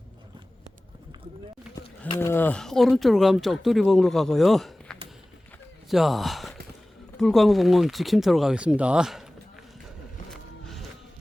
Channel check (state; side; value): normal; both; correlation 0.98